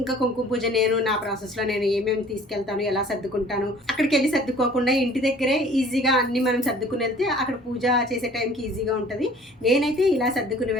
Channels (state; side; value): normal; both; correlation 0.51